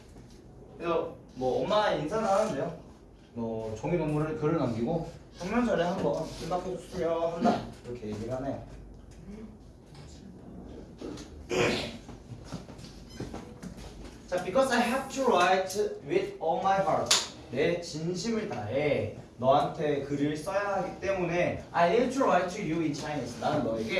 그래서 뭐 엄마 인사를 하는데요. 뭐 종이동물을 글을 남기고 성명절에 한번 생각해 주세요 한다 이렇게 얘기를 하네요. 자, because I have to write with all my heart. 내 진심을 다해 너한테 글을 써야 하기 때문에 I need to write to you in Chinese. 나는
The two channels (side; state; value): both; identical; correlation 1.00